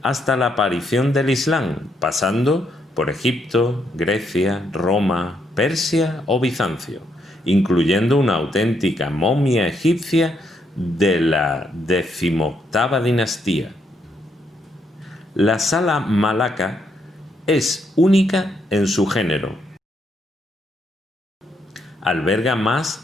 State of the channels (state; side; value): normal; both; correlation 0.76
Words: hasta la aparición del Islam, pasando por Egipto, Grecia, Roma, Persia o Bizancio, incluyendo una auténtica momia egipcia de la XVIII dinastía. La Sala Malacca es única en su género. Alberga